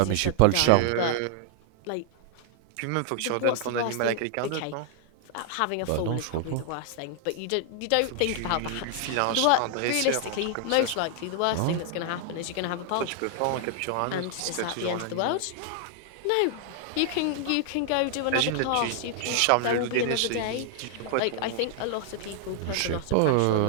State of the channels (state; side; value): different; both; correlation 0.00